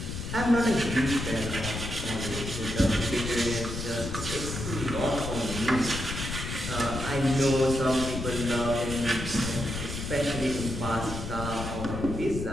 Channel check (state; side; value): noise; left; rumble, 5 dB below the sound